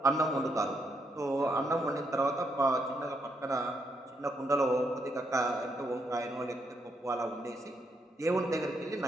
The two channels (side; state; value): both; normal; correlation 0.77